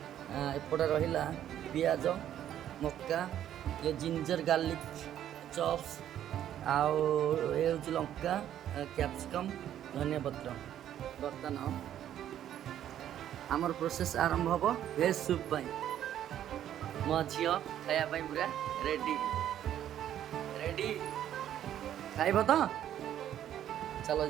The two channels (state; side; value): quieter; left; 11.0 dB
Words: रहा पियाज मक्का ये जिंजर गार्लिक चॉप्स आउ ये हूँ लंका कैप्सिकम धनिया पत्र बर्तमान आमर प्रोसेस आरंभ हम भेज सूप मो झी खायापी पूरा रेडी रेडी खाइब तो चलो